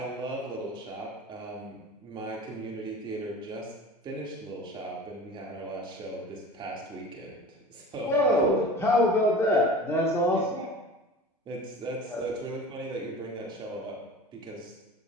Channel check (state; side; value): normal; both; correlation 0.37